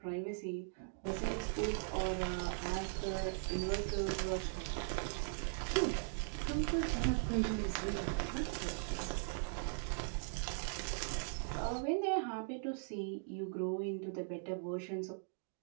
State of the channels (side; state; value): left; silent; digital silence